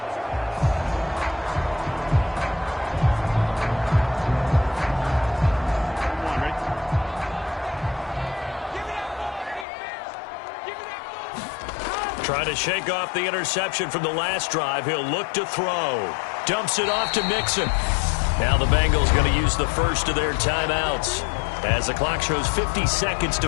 Trying to shake off the interception from the last drive. He'll look to throw. Dumps it off to Mixon. Now the Bengals going to use the first of their timeouts as the clock shows 50 seconds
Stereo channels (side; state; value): right; drops out; at 9.7 s